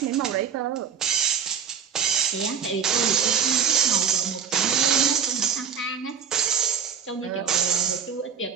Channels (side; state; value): left; quieter; 7.3 dB